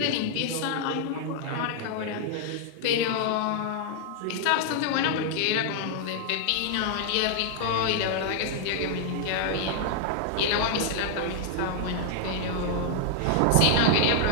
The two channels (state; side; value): different; both; correlation 0.00